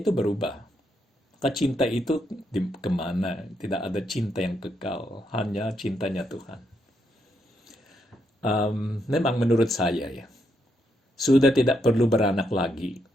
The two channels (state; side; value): normal; both; correlation 0.78